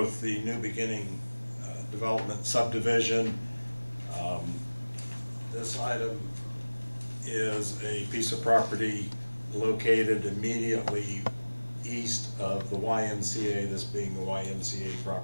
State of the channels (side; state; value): both; inverted; correlation -1.00